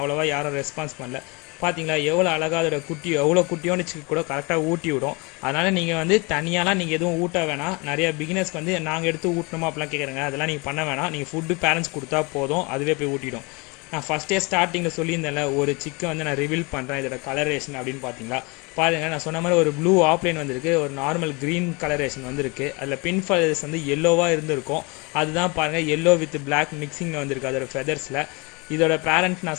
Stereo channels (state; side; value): quieter; right; 28.3 dB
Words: யாரும் ரெஸ்பான்ஸ் பண்ணல. பார்த்தீங்களா எவ்வளோ அழகாக அதோட குட்டி, எவ்வளோ குட்டியோன்னு சிக்கு கூட கரெக்டாக ஊட்டி விடும். அதனால் நீங்கள் வந்து தனியாலாம் நீங்கள் எதுவும் ஊட்ட வேணாம். நிறைய பிகினர்ஸ்க்கு வந்து நாங்கள் எடுத்து ஊட்டணுமா அப்படிலாம் கேட்குறேங்க, அதெல்லாம் நீங்கள் பண்ண வேணாம். நீங்கள் ஃபுட்டு பேரண்ட்ஸ் கொடுத்தா போதும், அதுவே போய் ஊட்டிடும். நான் ஃபஸ்ட்டே ஸ்டார்டிங்கில் சொல்லியிருந்தேன்ல, ஒரு சிக்கை வந்து நான் ரிவீல் பண்ணுறேன் இதோட கலரேஷன் அப்படின்னு பார்த்தீங்களா. பாருங்கள், நான் சொன்ன மாதிரி ஒரு ப்ளூ ஆப்லைன் வந்திருக்கு, ஒரு நார்மல் க்ரீன் கலரேஷன் வந்திருக்கு. அதில் பின் ஃபெதர்ஸ் வந்து எல்லோவாக இருந்திருக்கும், அதுதான் பாருங்கள் எல்லோ வித் பிளாக் மிக்சிங்கில் வந்திருக்கு அதோட ஃபெதர்ஸில். இதோட பேரண்ட்